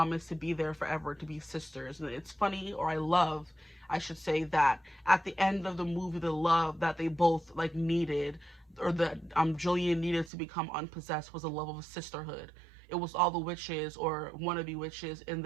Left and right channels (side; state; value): left; drops out; at 10.3 s